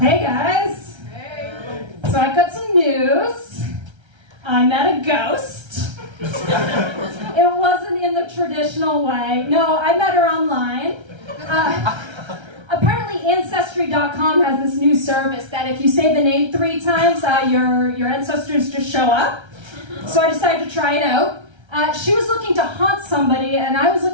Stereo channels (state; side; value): late; left; 1.3 ms